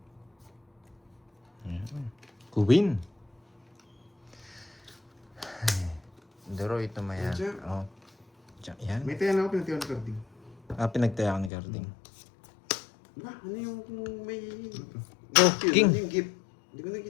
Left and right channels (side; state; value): right; drops out; at 11.5 s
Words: Queen. Daro ito mayan. Jack. Oh. Jack yan. May tayo na ako, pinatiwan ni Carding. Pinagtaya ko ni Carding. Ba, ano yung kung may... Oh, Yun, king. ano yung gift? Hindi ko